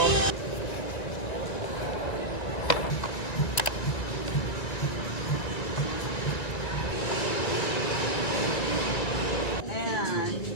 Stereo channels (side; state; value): right; late; 1.9 ms